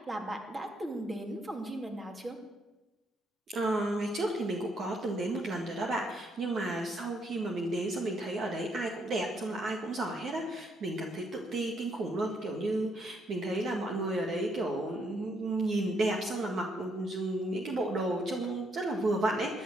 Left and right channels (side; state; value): both; normal; correlation 0.73